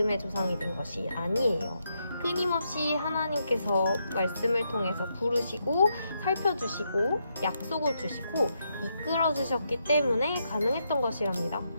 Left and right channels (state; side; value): inverted; both; correlation -0.80